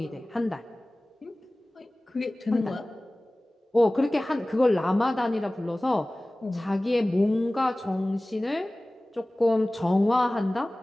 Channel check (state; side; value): normal; both; correlation 0.98